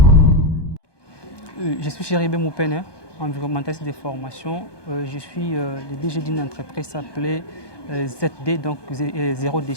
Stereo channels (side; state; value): right; late; 1.2 ms